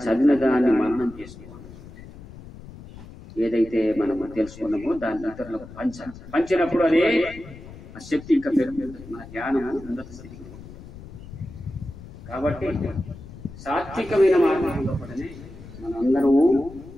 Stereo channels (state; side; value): noise; left; rumble, 16 dB below the sound